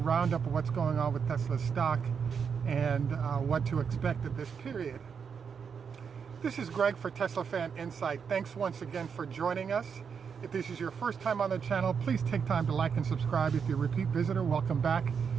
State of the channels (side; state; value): left; quieter; 6.5 dB